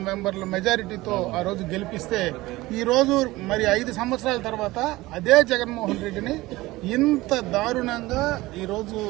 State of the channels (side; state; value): left; quieter; 19.2 dB